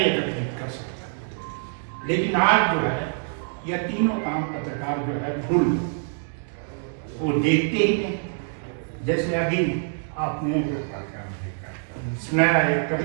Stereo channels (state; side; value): silent; left; digital silence